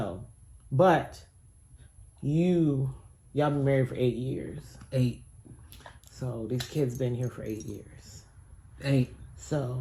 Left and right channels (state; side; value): identical; both; correlation 1.00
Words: but y'all been married for 8 years. 8. So these kids been here for 8 years. 8.